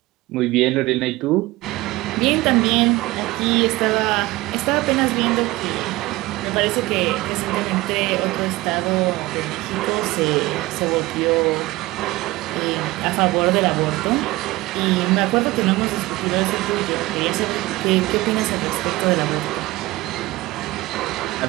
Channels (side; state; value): left; quieter; 19.6 dB